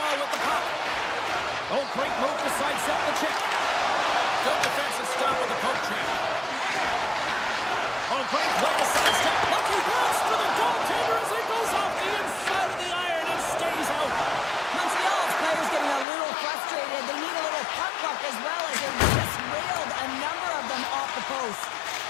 with the puck. Oh, great move to sidestep the check. Good defensive stop with the poke check. Oh, great play to sidestep. Lucky pass for the goaltender as it goes off the inside of the iron and stays out. Montreal's players getting a little frustrated. They need a little puck luck as well as they just railed a number of them off the post.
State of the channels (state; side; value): drops out; right; at 16.1 s